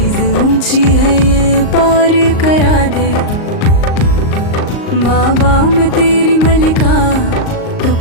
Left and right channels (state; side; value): late; right; 38 ms